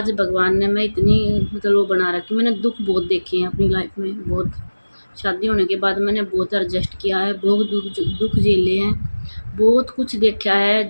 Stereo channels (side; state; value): both; inverted; correlation -1.00